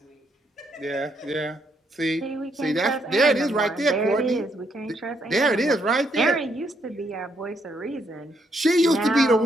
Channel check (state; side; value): normal; both; correlation 0.75